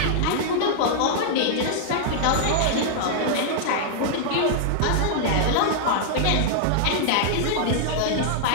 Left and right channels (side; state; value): both; different; correlation -0.01